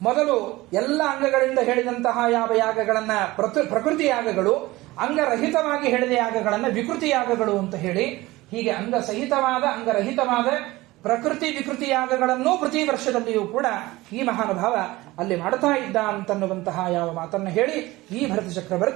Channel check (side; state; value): left; quieter; 19.4 dB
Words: ಮೊದಲು ಎಲ್ಲ ಅಂಗಗಳಿಂದ ಹೇಳಿದಂತಹ ಯಾವ ಯಾಗಗಳನ್ನ ಪ್ರಕೃತಿ ಯಾಗಗಳು, ಅಂಗರಹಿತವಾಗಿ ಹೇಳಿದ ಯಾಗಗಳನ್ನ ವಿಕೃತಿ ಯಾಗಗಳು ಅಂತ ಹೇಳಿ, ಹೀಗೆ ಅಂಗಸಹಿತವಾದ, ಅಂಗರಹಿತವಾದ ಪ್ರಕೃತಿ ವಿಕೃತಿ ಯಾಗಗಳನ್ನೂ ಪ್ರತಿ ವರ್ಷದಲ್ಲಿಯೂ ಕೂಡ ಈ ಮಹಾನುಭಾವ ಅಲ್ಲಿ ಮಾಡ್ತಾ ಇದ್ದ ಅಂತನ್ನುವಂತಹ ಯಾವ ಮಾತನ್ನು ಹೇಳಿ ಈ ಭರತ